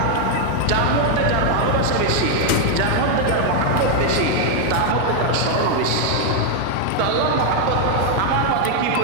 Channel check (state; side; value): different; both; correlation 0.00